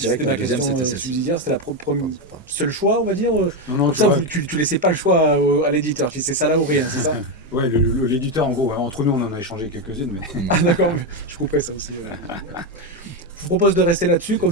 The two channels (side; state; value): both; normal; correlation 0.09